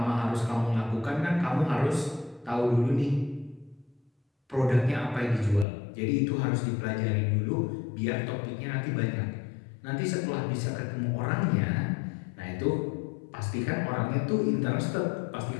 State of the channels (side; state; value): right; drops out; at 5.7 s